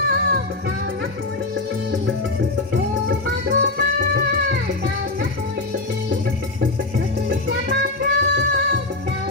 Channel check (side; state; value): right; quieter; 3.0 dB